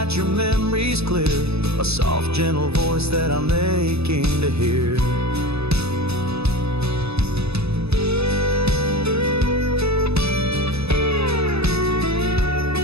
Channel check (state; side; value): late; left; 0.79 ms